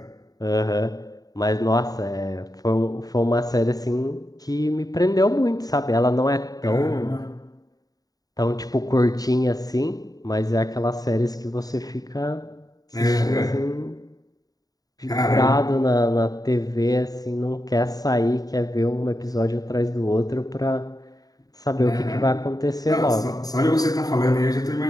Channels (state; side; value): late; right; 0.18 ms